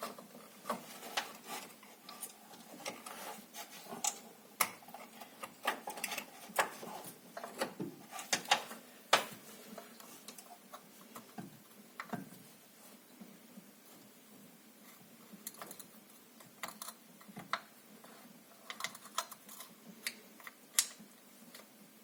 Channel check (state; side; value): identical; both; correlation 1.00